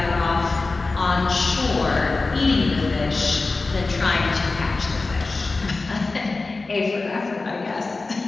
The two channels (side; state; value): right; quieter; 3.6 dB